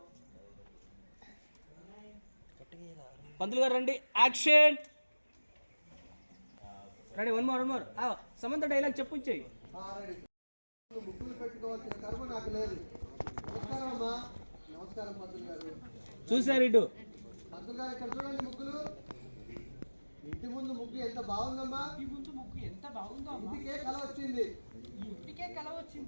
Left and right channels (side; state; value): both; inverted; correlation -1.00